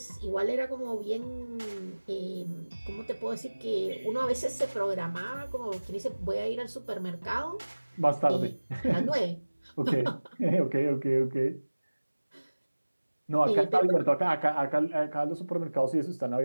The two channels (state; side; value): inverted; both; correlation -1.00